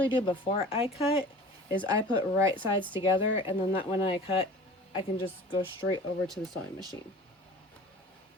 do before I cut is I put right sides together, and then that when I cut, I can just go straight over to the sewing machine.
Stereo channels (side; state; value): both; normal; correlation 0.42